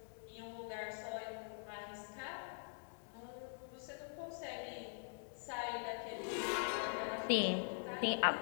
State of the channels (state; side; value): silent; right; digital silence